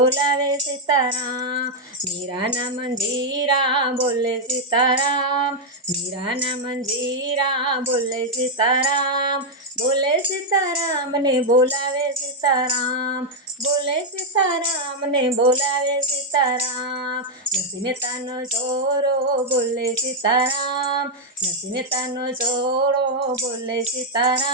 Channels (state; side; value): normal; both; correlation -0.01